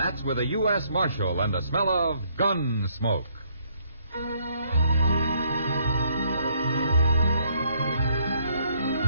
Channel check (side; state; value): both; inverted; correlation -0.68